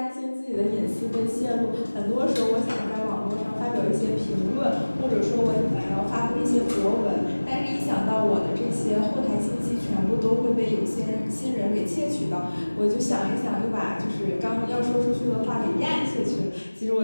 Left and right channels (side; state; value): both; inverted; correlation -1.00